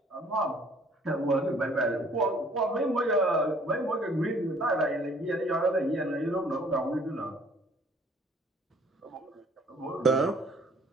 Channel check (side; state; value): both; normal; correlation 0.57